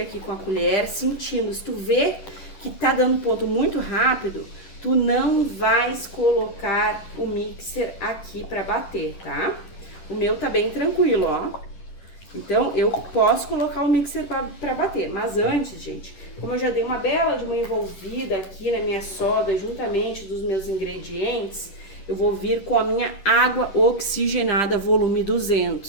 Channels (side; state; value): right; late; 10 ms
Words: com a colher, sentindo. Se tu vê que tá dando ponto muito rápido, tu não vais colocar o mixer aqui pra bater, tá? O meu tá bem tranquilo, ó. Então, eu posso colocar o mixer pra bater. Mas antes, gente, como eu já dei uma bela de uma envolvida aqui na minha soda, juntamente dos meus ingredientes, eu vou vir com a minha água oxigenada volume